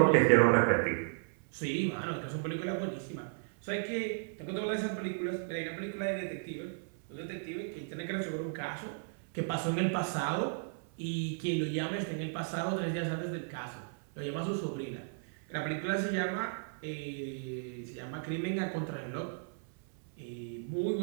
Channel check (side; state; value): left; silent; 55 dB below the other